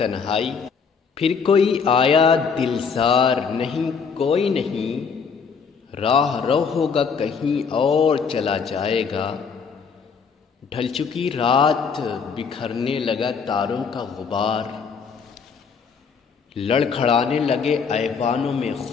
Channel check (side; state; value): right; quieter; 5.8 dB